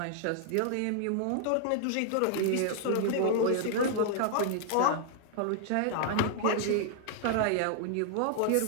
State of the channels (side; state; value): both; different; correlation 0.00